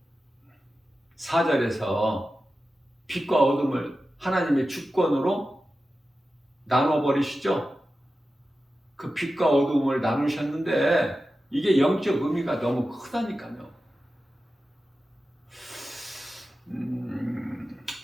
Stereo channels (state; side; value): normal; both; correlation 0.93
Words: 4절에서 빛과 어둠을 하나님의 주권으로 나눠버리시죠. 그 빛과 어둠을 나누셨는데 이게 영적 의미가 너무 크다니까요.